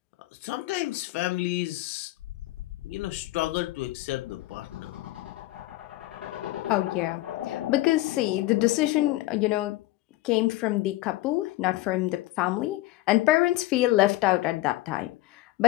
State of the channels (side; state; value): right; quieter; 17.6 dB